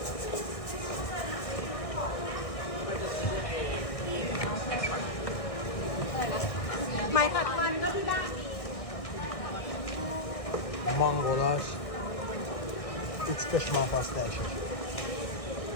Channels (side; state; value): right; late; 1.7 ms